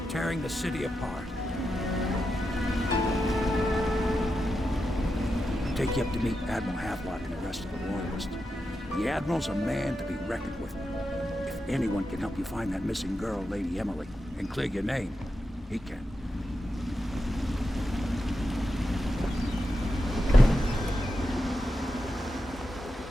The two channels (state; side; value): normal; both; correlation 0.88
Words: tearing the city apart. I'll take you up to meet Admiral Havelock and the rest of the Royalists. The Admiral's a man to be reckoned with. If anyone can help you find that missing girl, Lady Emily, and clear your name, he can.